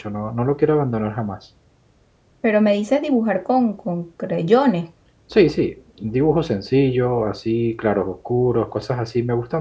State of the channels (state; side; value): identical; both; correlation 1.00